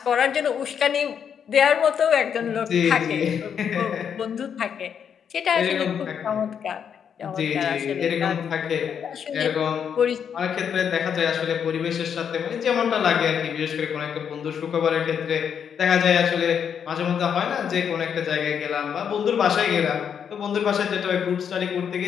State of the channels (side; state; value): right; quieter; 7.8 dB